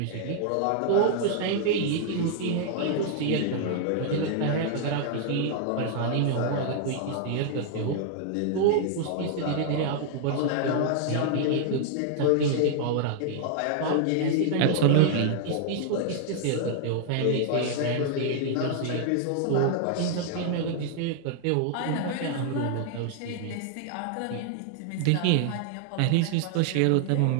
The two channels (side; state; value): both; different; correlation 0.00